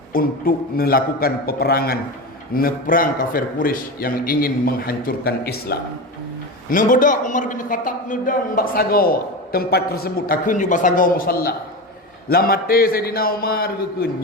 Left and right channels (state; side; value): normal; both; correlation 0.22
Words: untuk melakukan peperangan neperang kafir Quraisy yang ingin menghancurkan Islam. Nebedak Umar bin Khattab nedang bak sago tempat tersebut akun juga sago musalla. Lamate Sayyidina Umar gekun